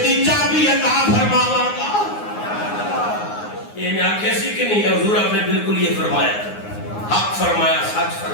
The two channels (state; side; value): late; right; 9.6 ms